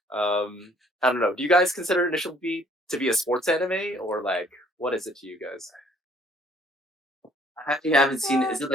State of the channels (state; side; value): normal; both; correlation 0.60